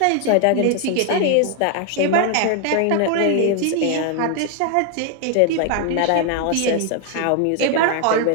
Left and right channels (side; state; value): both; different; correlation 0.00